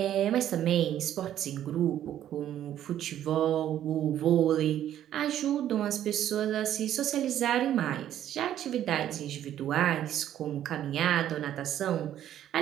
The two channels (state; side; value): quieter; left; 11.3 dB